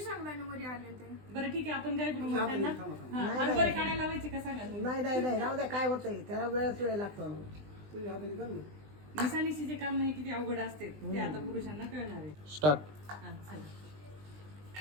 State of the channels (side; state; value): left; late; 20 ms